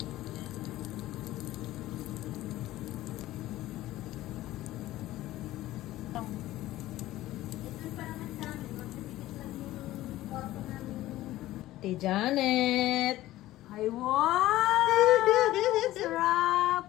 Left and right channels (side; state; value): right; quieter; 15.7 dB